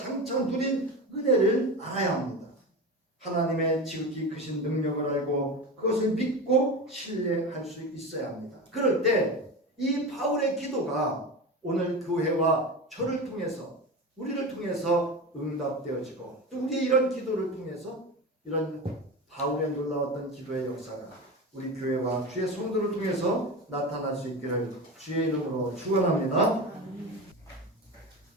누린 은혜를 알아야 합니다. 하나님의 지극히 크신 능력을 알고 그것을 믿고 신뢰할 수 있어야 합니다. 그럴 때 이 바울의 기도가 오늘 교회와 저를 통해서 우리를 통해서 응답되어지고 또 우리의 이런 기도를 통해서 이런 바울의 놀라웠던 기도의 역사가 우리 교회와 주의 성도를 통해서 나타날 수 있기를 주의 이름으로 축원합니다.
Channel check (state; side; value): normal; both; correlation 0.25